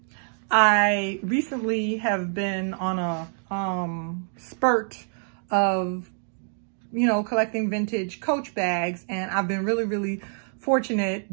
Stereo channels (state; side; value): silent; left; 61 dB below the other